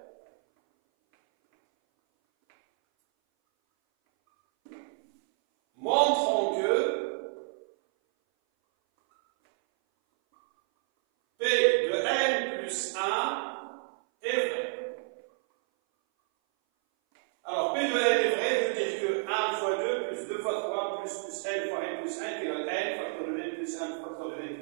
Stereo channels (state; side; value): silent; left; 58 dB below the other